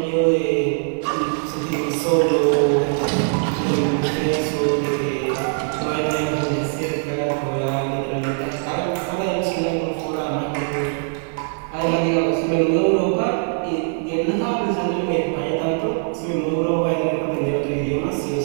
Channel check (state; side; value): silent; left; 64 dB below the other